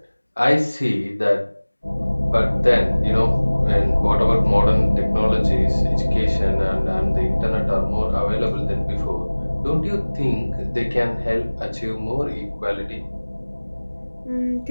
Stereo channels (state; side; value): inverted; both; correlation -1.00